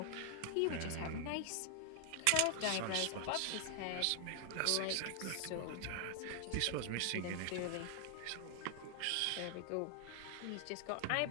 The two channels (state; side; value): different; both; correlation 0.00